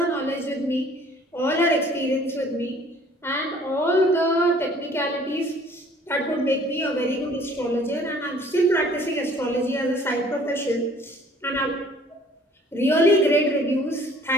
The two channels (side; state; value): both; normal; correlation 0.55